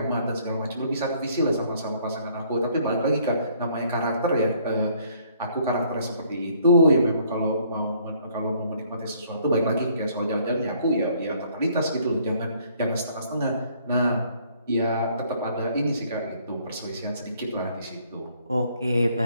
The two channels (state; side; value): inverted; both; correlation -0.63